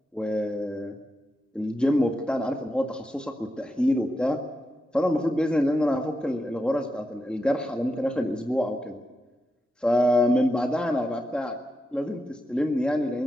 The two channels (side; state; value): both; normal; correlation 0.87